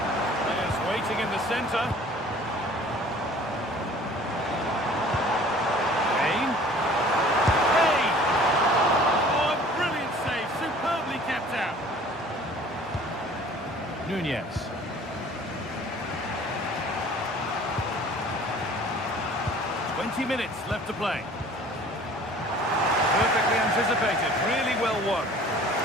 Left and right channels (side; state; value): both; normal; correlation 0.49